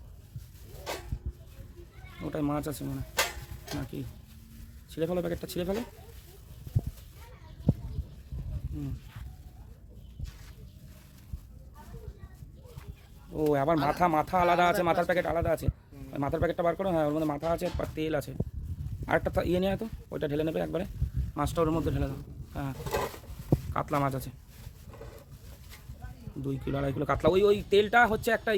ওটাই মাছ আছে মনে নাকি, ছিঁড়ে ফেলো প্যাকেটটা, ছিঁড়ে ফেলো। ও আবার মাথা, মাথা আলাদা আছে, মাথার প্যাকেট আলাদা আছে। মাথার প্যাকেটটা বার করো, হ্যাঁ ওর মধ্যে মাথা আছে, তেল আছে। আরেকটা ইয়ে নিয়ে তো ওইটা ঢেলে নেবে একবারে, মাছটা ওর মধ্যে ঢেলে দাও। হ্যাঁ কাতলা মাছ আছে 2 কিলো 2.5 কিলো কাতলা। ওই ওই তেলটা হচ্ছে একটা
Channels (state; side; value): identical; both; correlation 1.00